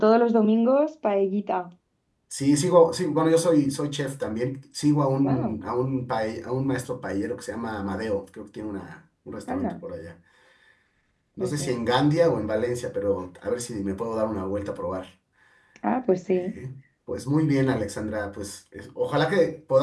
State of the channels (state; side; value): identical; both; correlation 1.00